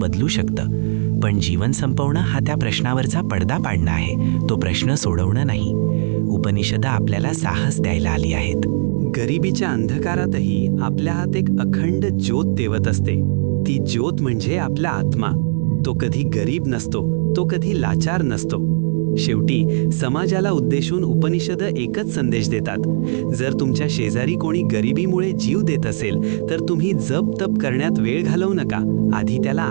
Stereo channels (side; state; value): left; silent; digital silence